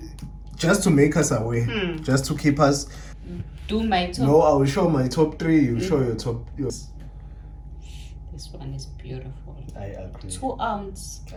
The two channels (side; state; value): both; identical; correlation 1.00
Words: just to make us aware, just to keep us. Do my top. No, I will show my top 3. You show your top. This one is beautiful. I agree. 2 ounce.